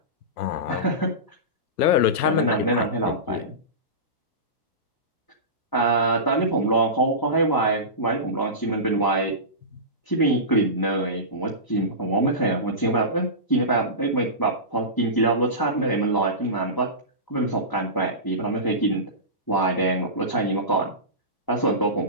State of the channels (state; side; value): late; right; 1.3 ms